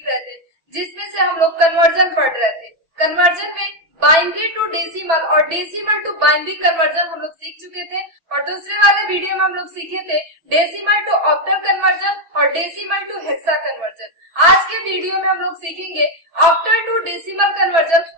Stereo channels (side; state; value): left; late; 6.1 ms